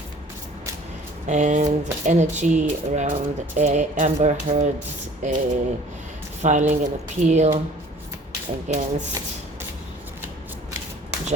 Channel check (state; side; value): normal; both; correlation 0.50